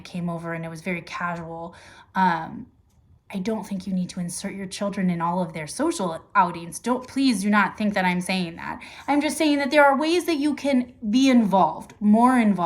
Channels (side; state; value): both; identical; correlation 1.00